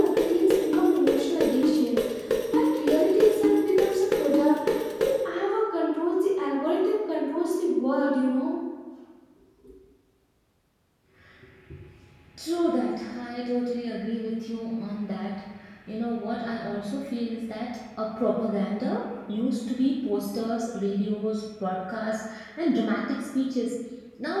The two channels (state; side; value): identical; both; correlation 1.00